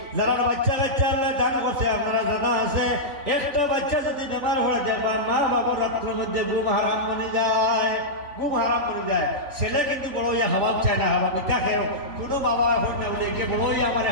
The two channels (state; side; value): late; left; 3.5 ms